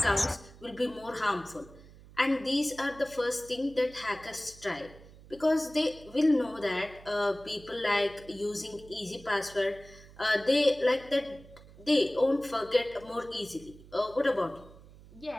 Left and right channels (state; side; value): noise; right; hum, 21 dB below the sound